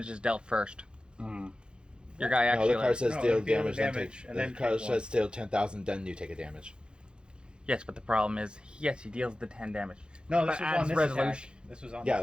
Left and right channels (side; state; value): left; late; 0.051 ms